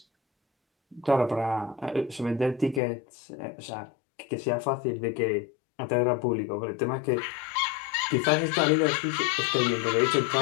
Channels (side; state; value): right; drops out; at 2.8 s